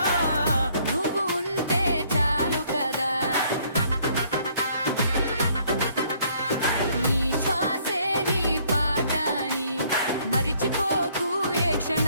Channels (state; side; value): inverted; both; correlation -0.64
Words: నువ్వు ఉంటే చాలు కదా. నీ శ్వాసే నీ పాటని మరిచిపోకు ఏ